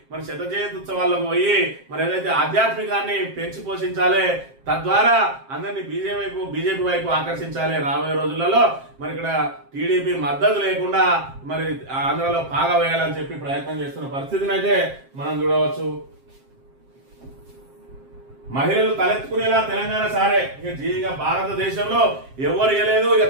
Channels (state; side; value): late; left; 7.5 ms